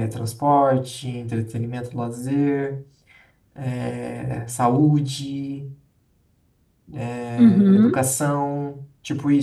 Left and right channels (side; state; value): both; identical; correlation 1.00